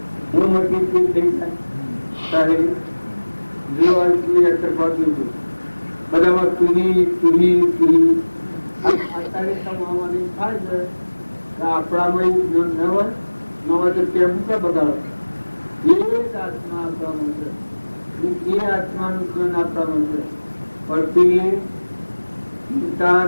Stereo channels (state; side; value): inverted; both; correlation -1.00